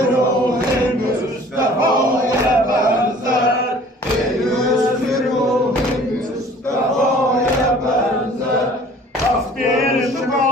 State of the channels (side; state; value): both; normal; correlation 0.50